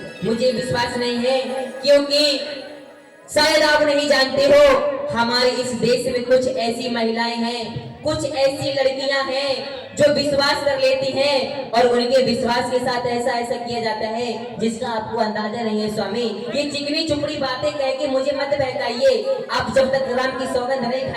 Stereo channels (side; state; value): both; identical; correlation 1.00